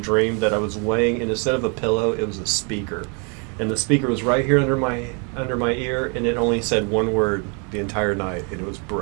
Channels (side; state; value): left; quieter; 35.8 dB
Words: that I was laying, and instead of a pillow, it was a speaker. And the speaker was right here under my ear, and it only said one word the entire night, and it was